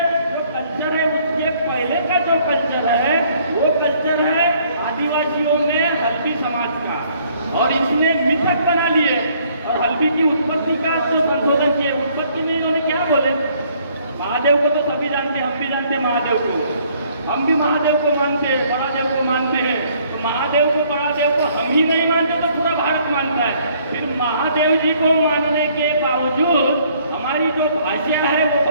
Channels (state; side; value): inverted; both; correlation -0.63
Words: जो कल्चर है उसके पहले का जो कल्चर है वो कल्चर है आदिवासियों में हल्बी समाज का, और इसने मिथक बना लिए और हल्बी की उत्पत्ति का जो संशोधन किए। उत्पत्ति में इन्होंने क्या बोले, महादेव को तो सभी जानते हैं, हम भी जानते हैं महादेव को, हम भी महादेव को मानते हैं, महादेव को मानते हैं। तो महादेव को हम ही नहीं मानते तो पूरा भारत मानता है। फिर महादेव जी को मानने के बावजूद हमारी जो भाषा है वो